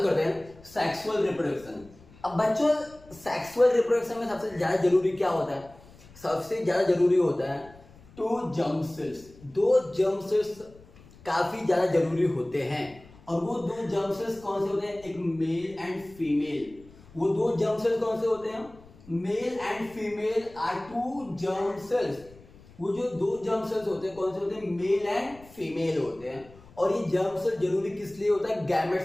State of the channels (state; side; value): noise; left; rumble, 23 dB below the sound